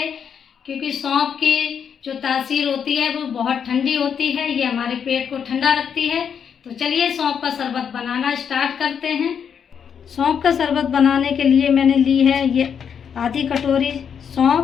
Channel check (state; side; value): quieter; right; 7.5 dB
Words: क्योंकि सौंफ की जो तासीर होती है वो बहुत ठंडी होती है। ये हमारे पेट को ठंडा रखती है। तो चलिए सौंफ का शरबत बनाना स्टार्ट करते हैं। सौंफ का शरबत बनाने के लिए मैंने ली है ये आधी कटोरी